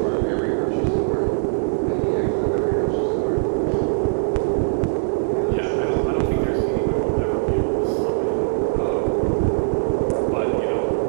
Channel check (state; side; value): silent; left; digital silence